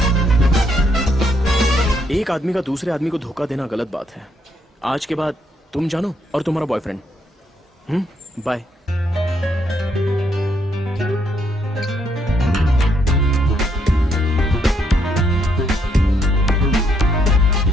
एक आदमी का दूसरे आदमी को धोखा देना गलत बात है। आज के बाद तुम जानो और तुम्हारा बॉयफ्रेंड। बाय।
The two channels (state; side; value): normal; both; correlation 0.74